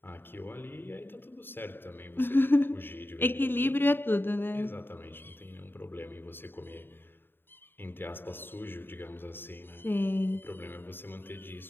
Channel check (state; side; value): late; right; 0.10 ms